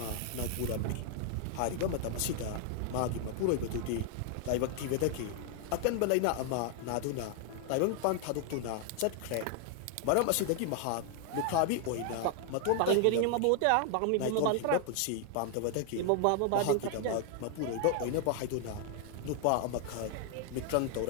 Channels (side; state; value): both; different; correlation 0.00